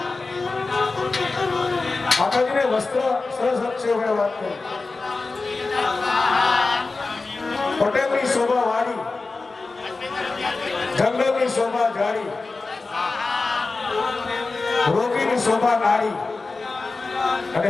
માતાજીને વસ્ત્ર સરસ છે વાત કરી. પટેલની શોભા વાળી, જંગલની શોભા જાડી, રોગીની શોભા નારી અને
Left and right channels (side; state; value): right; quieter; 3.8 dB